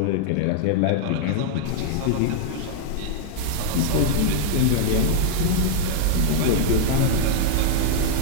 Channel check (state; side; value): different; both; correlation -0.01